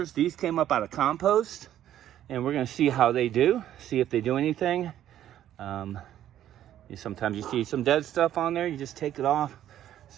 These came up out of compost, and we're going to see how they do, see if they do anything. Sometimes you see some dead stuff on there. You just take it off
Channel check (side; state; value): left; quieter; 11.6 dB